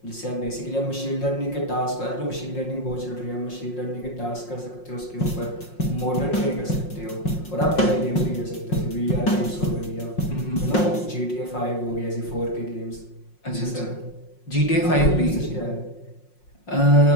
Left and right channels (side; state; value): right; late; 5.6 ms